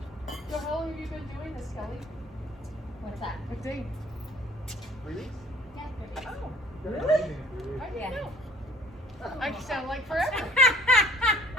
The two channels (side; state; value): both; normal; correlation 0.56